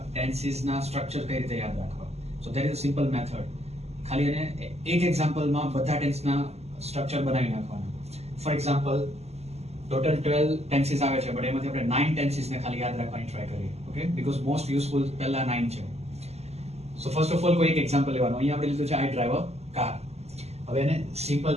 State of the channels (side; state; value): left; late; 0.30 ms